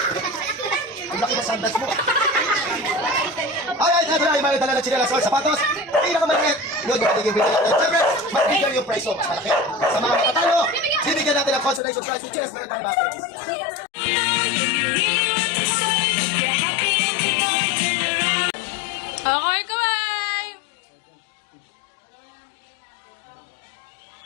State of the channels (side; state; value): right; drops out; at 11.8 s